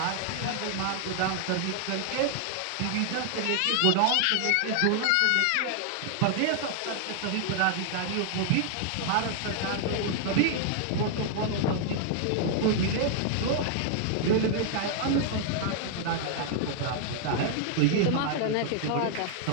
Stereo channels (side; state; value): both; different; correlation 0.00